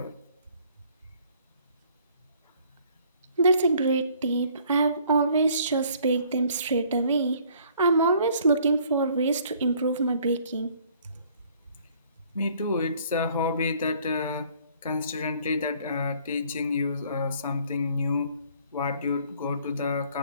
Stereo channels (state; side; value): inverted; both; correlation -0.59